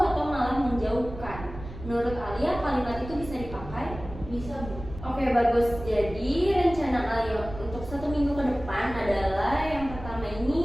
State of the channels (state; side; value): noise; right; rumble, 12 dB below the sound